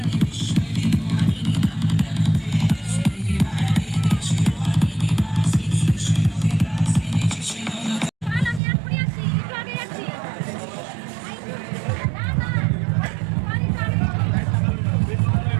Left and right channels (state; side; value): drops out; left; at 8.6 s